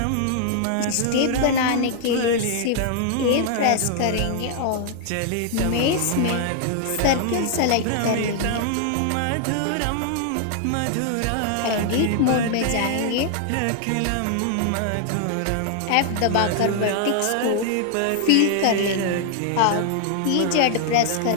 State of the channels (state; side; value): different; both; correlation 0.00